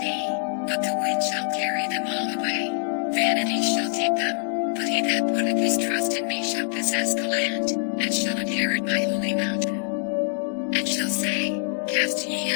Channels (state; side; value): silent; right; digital silence